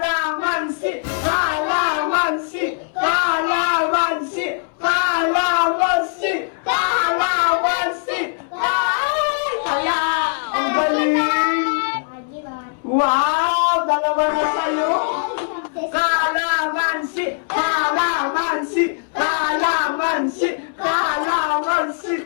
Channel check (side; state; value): right; silent; 66 dB below the other